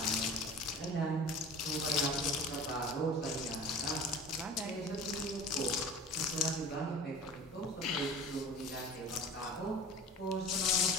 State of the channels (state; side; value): normal; both; correlation 0.39